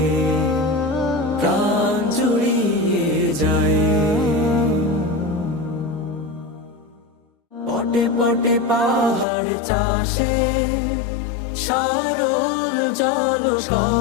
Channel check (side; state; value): right; drops out; at 9.2 s